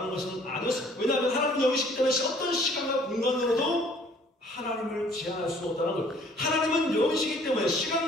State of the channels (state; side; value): normal; both; correlation 0.57